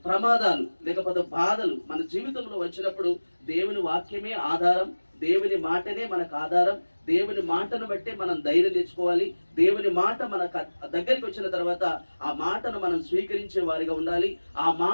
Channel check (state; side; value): inverted; both; correlation -1.00